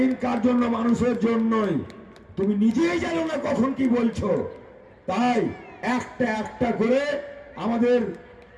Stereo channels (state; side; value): identical; both; correlation 1.00